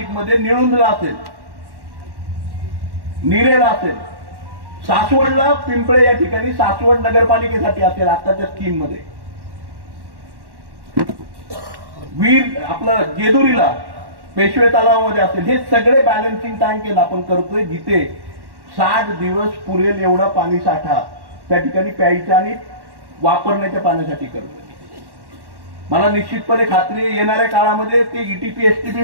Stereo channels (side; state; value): left; late; 1.1 ms